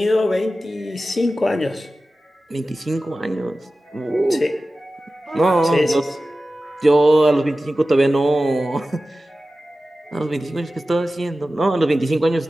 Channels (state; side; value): normal; both; correlation 0.95